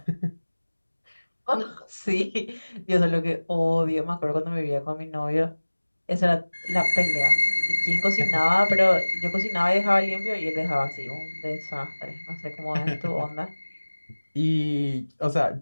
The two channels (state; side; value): inverted; both; correlation -1.00